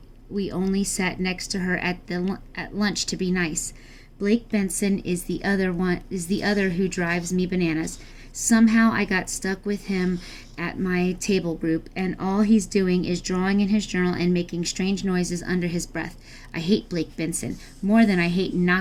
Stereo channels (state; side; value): identical; both; correlation 1.00